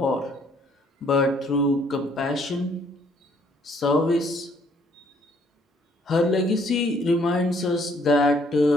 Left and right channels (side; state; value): both; normal; correlation 0.65